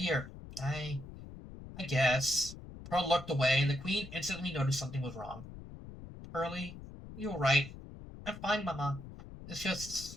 I guess. Pearl looked away, and the queen instantly noticed something was wrong. Pearlie, you were right. I'm fine, Mama. It's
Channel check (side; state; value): left; noise; rumble, 14 dB below the sound